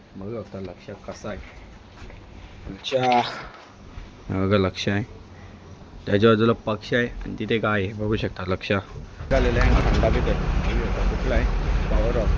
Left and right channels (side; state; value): both; identical; correlation 1.00